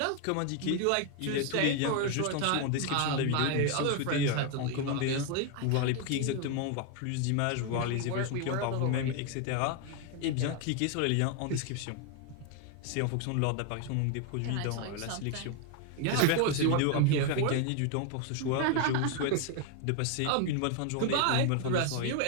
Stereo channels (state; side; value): different; both; correlation 0.01